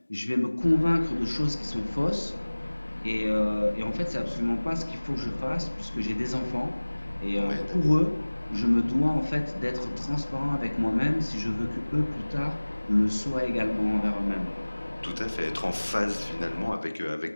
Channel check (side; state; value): both; inverted; correlation -1.00